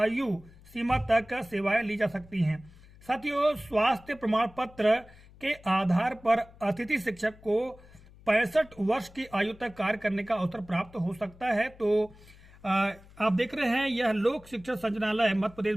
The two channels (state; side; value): noise; left; hum, 23 dB below the sound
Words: सीमा तक सेवाएं ली जा सकती हैं। साथियों, स्वास्थ्य प्रमाण पत्र के आधार पर अतिथि शिक्षक को 65 वर्ष की आयु तक कार्य करने का अवसर प्राप्त हो सकता है। तो आप देख रहे हैं, यह लोक शिक्षण संचालनालय मध्य प्रदेश